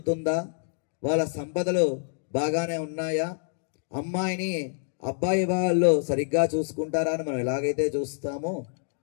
వాళ్ళ సంపదలు బాగానే ఉన్నాయా, అమ్మాయిని అబ్బాయి వాళ్ళు సరిగ్గా చూసుకుంటారా అని మనం ఎలాగైతే చూస్తామో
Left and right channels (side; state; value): right; silent; digital silence